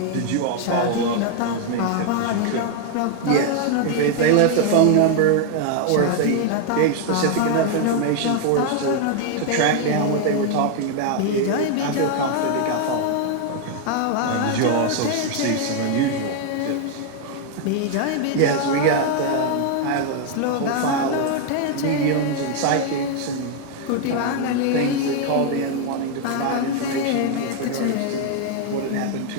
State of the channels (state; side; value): different; both; correlation 0.00